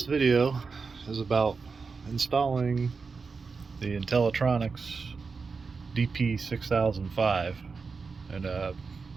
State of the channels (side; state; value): left; quieter; 4.8 dB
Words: video is about installing the Intellitronix DP6005 in a